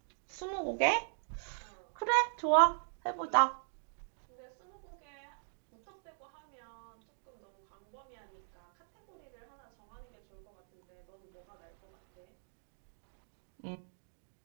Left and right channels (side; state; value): left; silent; digital silence